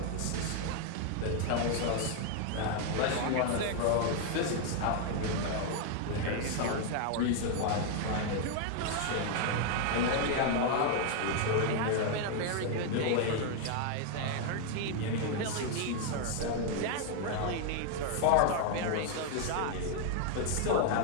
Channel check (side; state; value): both; different; correlation 0.01